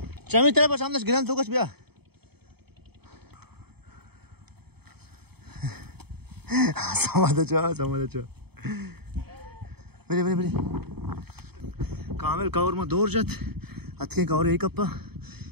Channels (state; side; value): late; left; 0.97 ms